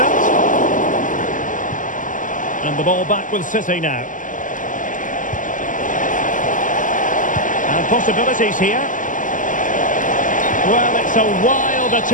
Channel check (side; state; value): right; late; 0.38 ms